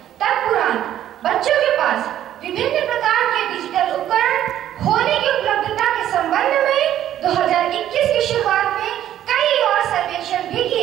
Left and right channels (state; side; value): quieter; left; 11.7 dB